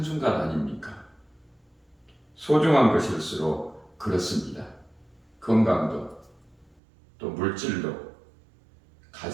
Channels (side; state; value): left; drops out; at 6.8 s